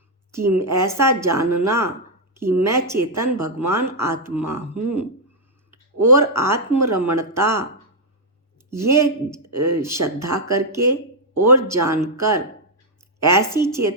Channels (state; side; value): normal; both; correlation -0.03